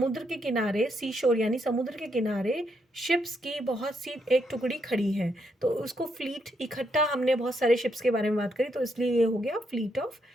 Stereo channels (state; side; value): normal; both; correlation 0.77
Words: के किनारे, सी शोर यानी समुद्र के किनारे, शिप्स की बहुत सी एक टुकड़ी खड़ी है, तो उसको फ्लीट, इकट्ठा हमने बहुत सारे शिप्स के बारे में बात करी, तो इसलिए ये हो गया फ्लीट ऑफ